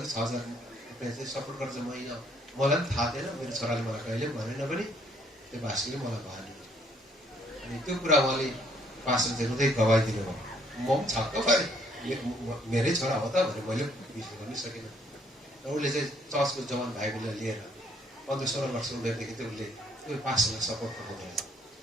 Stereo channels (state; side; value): normal; both; correlation 0.65